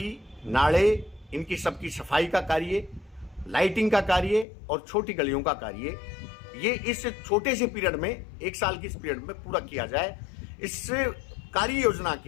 नाले इनकी सबकी सफाई का कार्य, लाइटिंग का कार्य और छोटी गलियों का कार्य, ये इस छोटे से पीरियड में 1 साल की इस पीरियड में पूरा किया जाए। इस कार्य योजना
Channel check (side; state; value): right; drops out; at 4.5 s